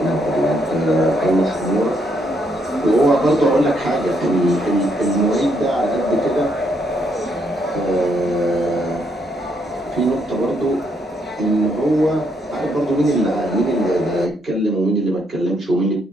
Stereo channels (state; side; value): normal; both; correlation 0.74